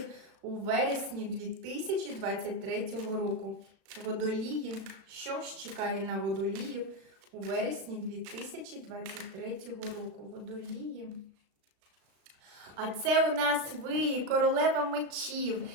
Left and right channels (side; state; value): left; late; 36 ms